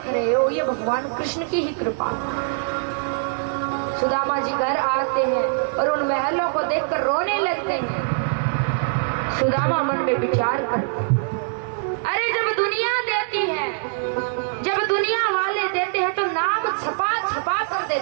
रहे हो ये भगवान कृष्ण की ही कृपा। सुदामा जी घर आते हैं और उन महलों को देखकर रोने लगते हैं। सुदामा मन में विचार कर, अरे जब दुनिया देती है, जब दुनिया वाले देते हैं तो नाम छपा छपा कर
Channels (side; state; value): left; silent; digital silence